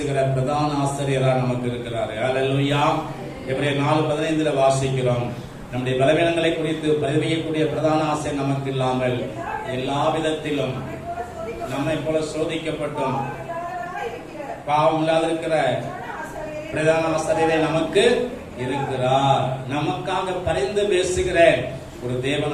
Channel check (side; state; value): both; identical; correlation 1.00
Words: பிரதான ஆசிரியராக நமக்கு இருக்கிறார். அல்லேலூயா. எபிரேயர் 4:15 வாசிக்கிறோம். நம்முடைய பலவீனங்களை குறித்து பரிவையக்கூடிய பிரதான ஆசை நமக்கு இல்லாமல் எல்லா விதத்திலும் நம்மை போல சோதிக்கப்பட்டும் பாவம் இல்லாதிருக்கிற பிரதான ஆசிரியரே நமக்கு இருக்கிறார். நமக்காக பரிந்து பேசுகிற ஒரு